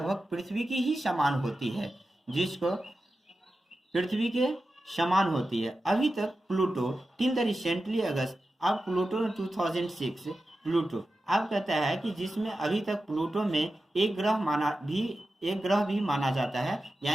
पृथ्वी की ही समान होती है, जिसको पृथ्वी के समान होती है। अभी तक प्लूटो टिल द रिसेंटली अगस्त, अब प्लूटो 2006 प्लूटो अब कहता है कि जिसमें अभी तक प्लूटो में एक ग्रह भी माना जाता है।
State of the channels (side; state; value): both; normal; correlation 0.92